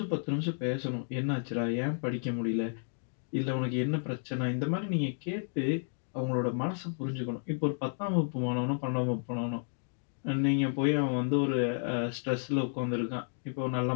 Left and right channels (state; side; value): silent; right; digital silence